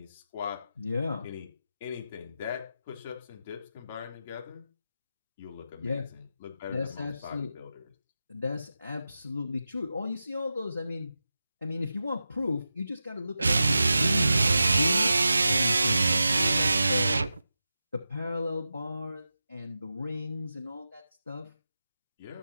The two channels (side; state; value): both; inverted; correlation -0.92